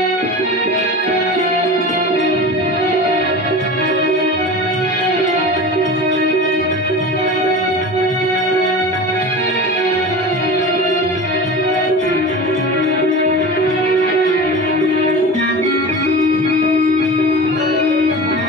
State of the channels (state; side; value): normal; both; correlation 0.32